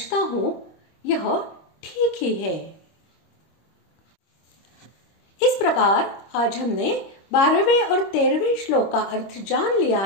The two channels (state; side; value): late; right; 25 ms